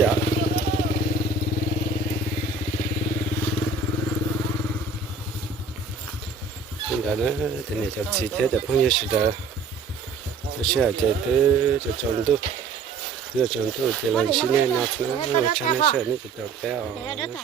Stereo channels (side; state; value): left; quieter; 4.3 dB